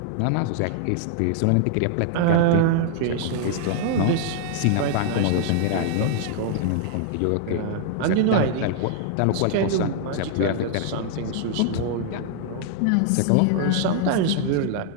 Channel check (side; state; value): both; different; correlation -0.01